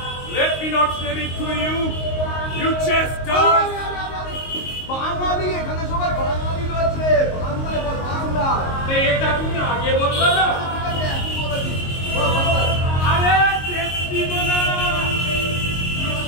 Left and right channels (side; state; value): right; late; 22 ms